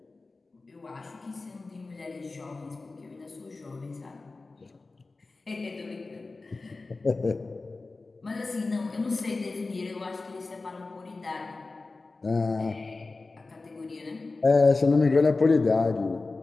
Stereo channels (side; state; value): right; quieter; 3.6 dB